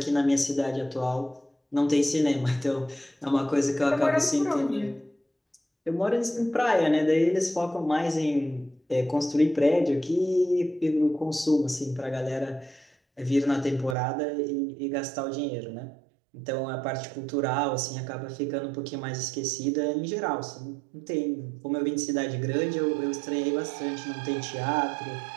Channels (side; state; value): left; drops out; at 14.0 s